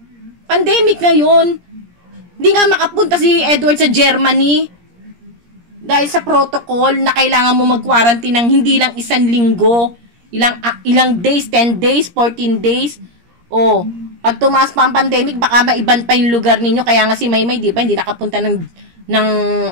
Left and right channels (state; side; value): late; left; 17 ms